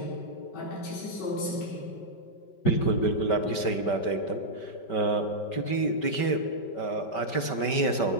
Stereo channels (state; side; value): late; right; 5.2 ms